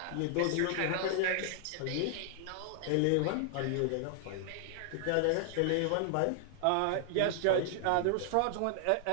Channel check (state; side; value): different; both; correlation 0.00